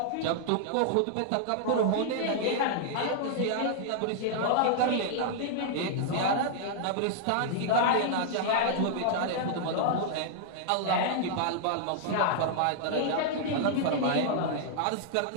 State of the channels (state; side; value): different; both; correlation -0.01